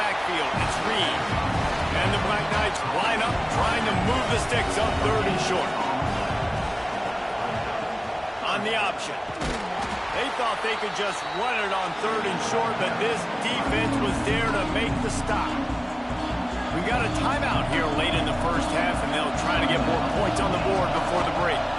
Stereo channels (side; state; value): both; identical; correlation 1.00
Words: it's Reed. And the Black Knights line up, trying to move the sticks up 3rd and short. On the option. They thought they could just run it on 3rd and short, but this defense was there to make the stop. We got a timeout here late in the first half, and they'll try to get more points on the board before the break.